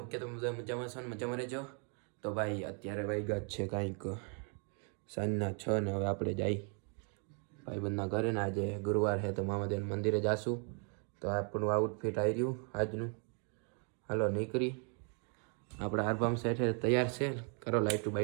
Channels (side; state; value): left; quieter; 39.6 dB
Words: કે તમે બધા મજામાં છો ને મજામાં રહેજો. તો ભાઈ અત્યારે વાગ્યા જ છે કાંઈક સાંજના 6 ને હવે આપણે જઈ ભાઈબંધના ઘરે ને આજે ગુરુવાર છે તો મામાદેવ મંદિરે જાશું. તો આપણું આઉટફિટ આવી રહ્યું આજનું. હાલો નીકળી આપણા આરબામ સેઠે તૈયાર છે. કરો લાઈટું